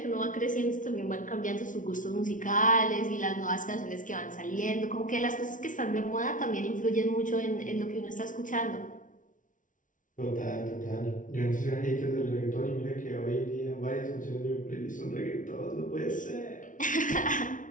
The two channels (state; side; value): late; right; 0.38 ms